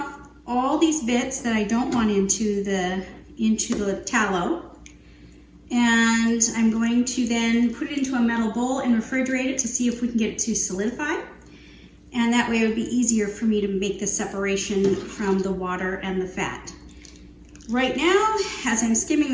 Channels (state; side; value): identical; both; correlation 1.00